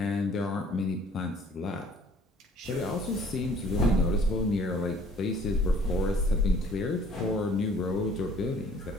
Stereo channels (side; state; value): both; normal; correlation 0.55